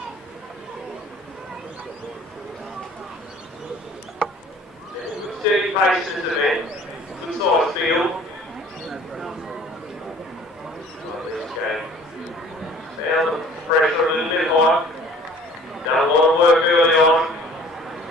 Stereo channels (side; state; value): both; normal; correlation 0.51